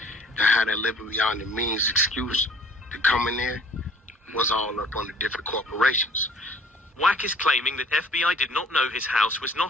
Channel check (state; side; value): normal; both; correlation 0.53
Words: that had a living beyond the means excuse to come in there was all up on the different corporations. WACK is claiming that FBI did not know his house was